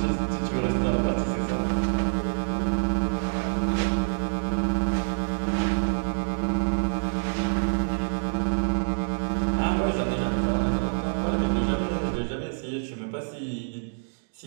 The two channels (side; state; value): left; silent; digital silence